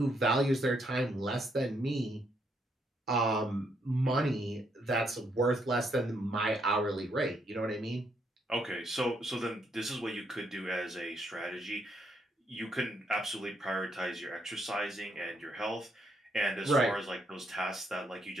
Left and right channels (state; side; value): normal; both; correlation 0.75